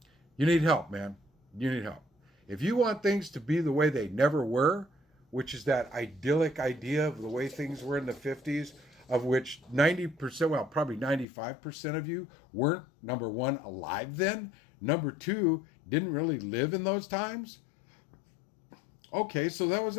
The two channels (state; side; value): drops out; right; at 11.2 s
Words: you need help, man. You need help. If you want things to be the way they never were, which is that idyllic idea of the way things were in the 50s, of which 90%, well, probably 95% of you weren't, number one, alive then, number two, didn't really live in those times. Okay, so that was